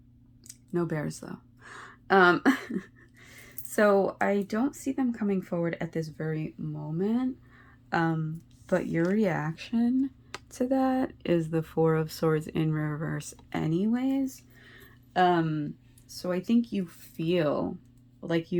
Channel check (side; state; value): both; identical; correlation 1.00